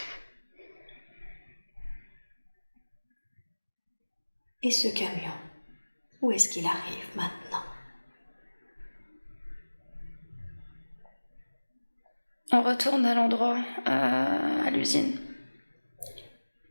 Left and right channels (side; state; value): both; inverted; correlation -1.00